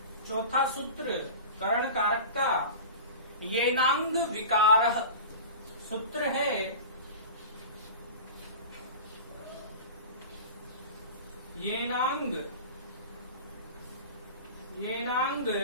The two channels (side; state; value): both; inverted; correlation -0.33